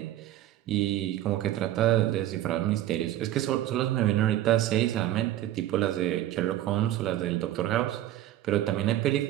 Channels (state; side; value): quieter; left; 13.3 dB